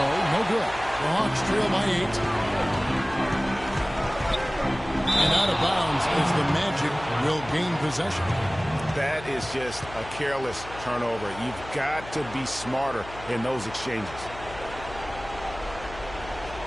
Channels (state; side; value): noise; left; hum, 15 dB below the sound